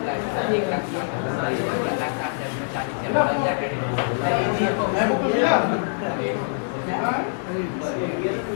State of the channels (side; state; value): right; silent; digital silence